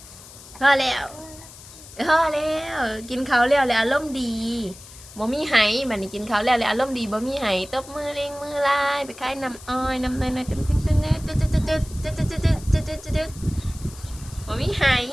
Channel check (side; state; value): left; noise; hiss, 18 dB below the sound